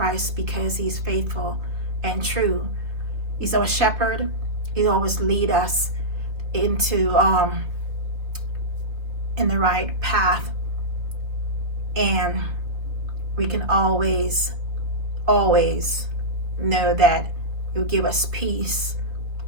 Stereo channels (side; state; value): left; late; 3.5 ms